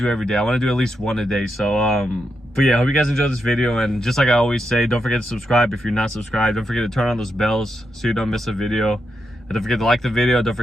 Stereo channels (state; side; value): normal; both; correlation 0.84